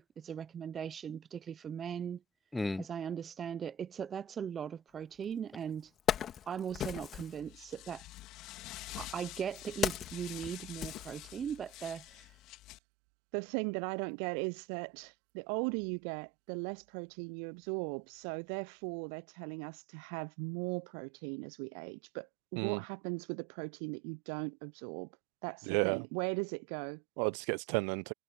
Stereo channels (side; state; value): left; drops out; at 12.8 s